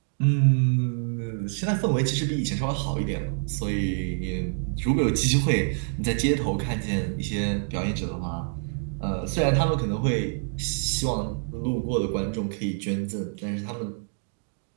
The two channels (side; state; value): left; silent; 60 dB below the other